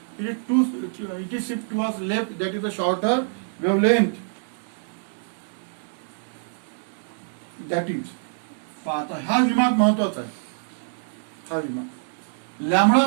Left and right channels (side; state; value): left; silent; 61 dB below the other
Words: it is shift towards left. That is the shorter wavelength. That is. आता हा विभाग महत्वाचा आहे. हा विभाग lambda